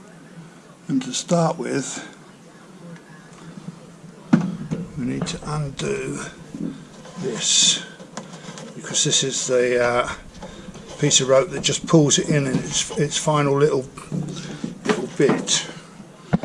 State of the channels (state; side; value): identical; both; correlation 1.00